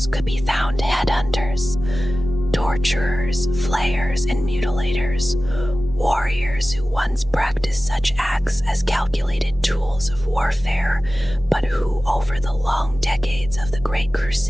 could be found headhunters, torturers, flayers, and mutilators, warriors who once practiced such acts as calculated tools of warfare, but who, over the long decades of the Great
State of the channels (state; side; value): normal; both; correlation 0.96